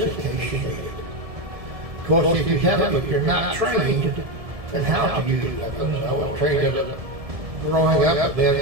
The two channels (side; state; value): left; late; 1.7 ms